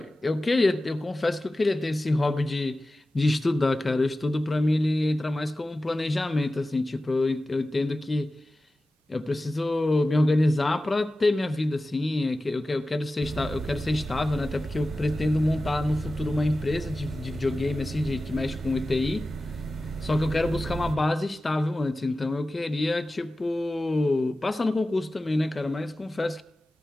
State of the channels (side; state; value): both; normal; correlation 0.95